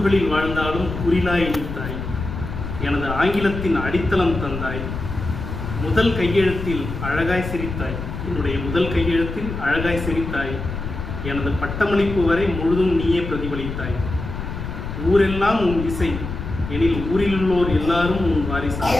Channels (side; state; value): left; noise; rumble, 6 dB below the sound